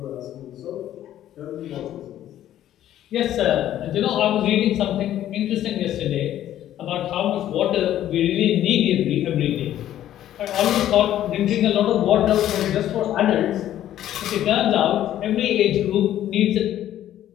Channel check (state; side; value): quieter; right; 12.1 dB